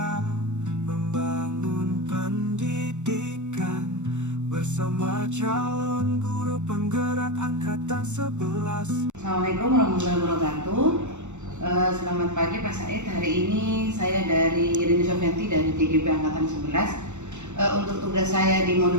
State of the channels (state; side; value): late; left; 0.84 ms